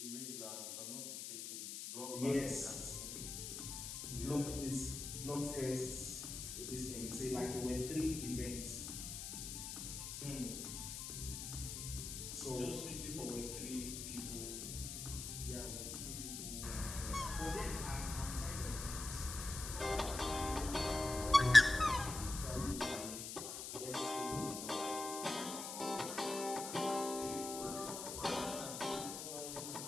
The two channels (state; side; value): noise; left; hiss, 6 dB below the sound